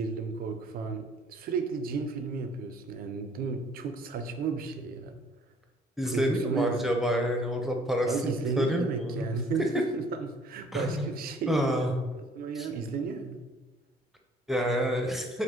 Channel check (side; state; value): both; normal; correlation 0.58